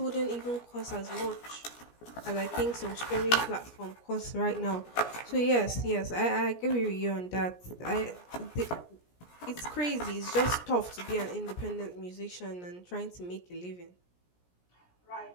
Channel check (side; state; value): right; late; 17 ms